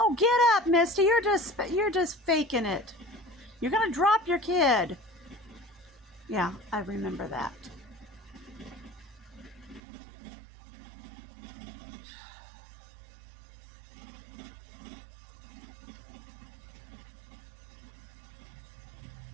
get up, Misty! You're just faking it. You're gonna drop your kid. Yeah, I remember that.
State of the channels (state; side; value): drops out; left; at 9.8 s